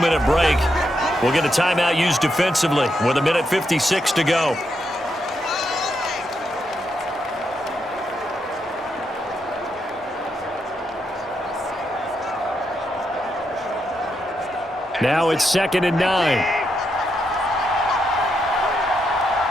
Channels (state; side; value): normal; both; correlation 0.81